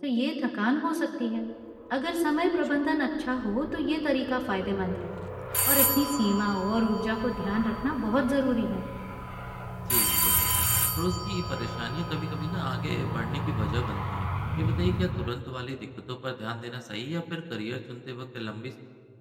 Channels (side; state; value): both; identical; correlation 1.00